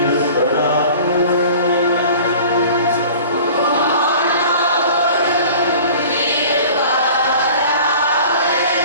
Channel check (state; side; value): inverted; both; correlation -0.44